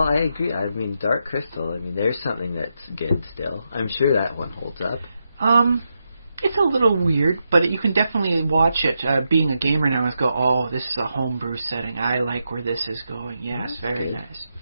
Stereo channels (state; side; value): inverted; both; correlation -0.85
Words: I agree. Dark Crystal, there's something that's good still. I'm sure that one holds up. It's a little weird, but you can definitely watch it. Being a gamer now, and go, oh, this is a homebrew setting. I like where this is going. Yes, very